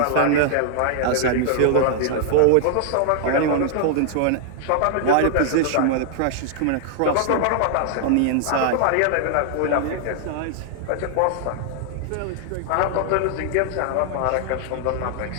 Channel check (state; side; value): different; both; correlation 0.00